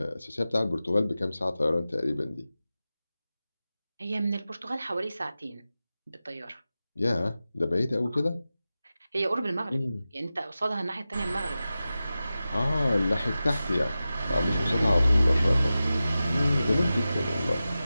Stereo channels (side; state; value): both; inverted; correlation -0.94